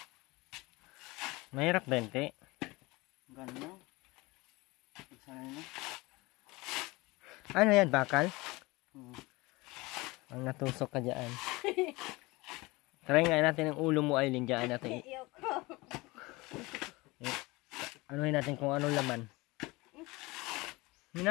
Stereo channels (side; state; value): right; quieter; 22.6 dB